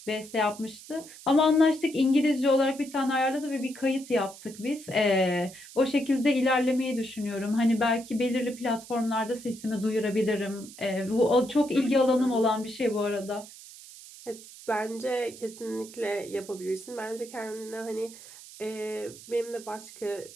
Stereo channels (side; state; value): right; noise; hiss, 17 dB below the sound